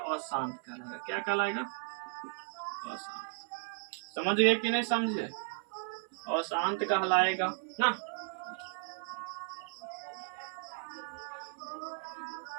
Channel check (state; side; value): silent; left; 54 dB below the other